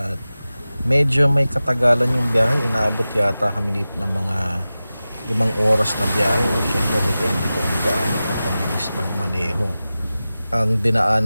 medyo may katagalan yung biyahe. Inaabot yata kami dito ng mga 5 oras na biyahe. Siyempre depende kung gaano ka kabilis magmaneho. Ang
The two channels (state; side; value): inverted; both; correlation -0.95